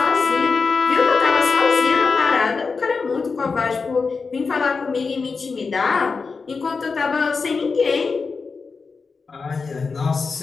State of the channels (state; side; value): quieter; right; 4.7 dB